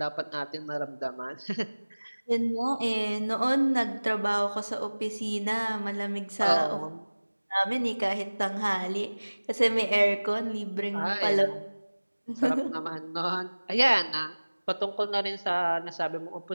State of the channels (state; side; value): inverted; both; correlation -1.00